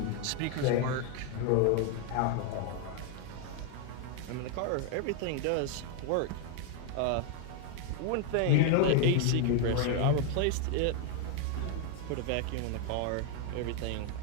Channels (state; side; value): different; both; correlation 0.01